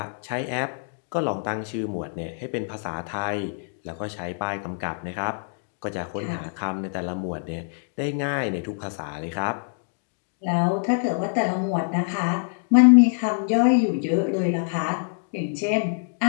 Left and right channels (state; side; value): silent; right; digital silence